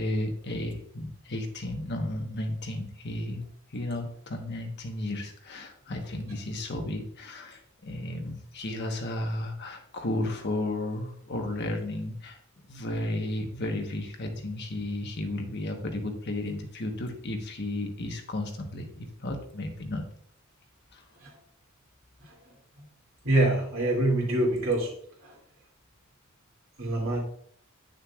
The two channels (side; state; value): both; normal; correlation 0.64